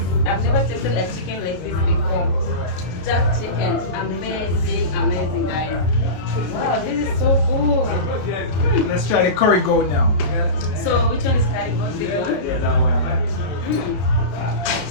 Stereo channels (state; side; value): late; right; 32 ms